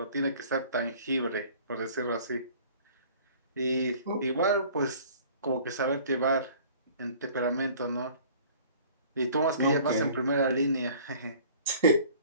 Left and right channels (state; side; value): inverted; both; correlation -0.49